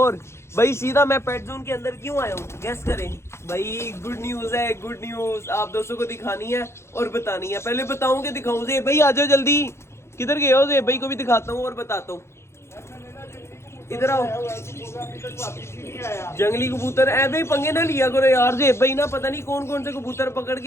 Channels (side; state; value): right; late; 0.13 ms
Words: भाई सीधा मैं पेट जोन के अंदर क्यों आया हूँ गैस करें भाई? गुड न्यूज है, गुड न्यूज आप दोस्तों को दिखानी है और बतानी है। पहले बताऊँ कि दिखाऊँ? ज़ेब भाई आ जाओ जल्दी। किधर गए हो? ज़ेब भाई को भी दिखाता हूँ और बताता हूँ। इधर आओ। जंगली कबूतर ऐ भाई पंगे ना लिया करो यार। ज़ेब भाई ना पता नहीं कौन कौन से कबूतर पकड़